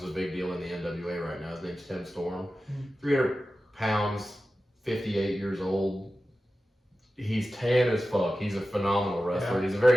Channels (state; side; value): normal; both; correlation 0.94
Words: a big deal in the NWA right now. His name's Tim Storm. 300 pounds, 58 years old. He's tan as fuck. He's a phenomenal wrestler. Yeah. He's a